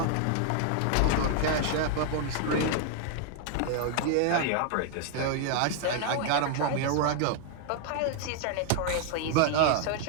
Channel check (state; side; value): different; both; correlation 0.00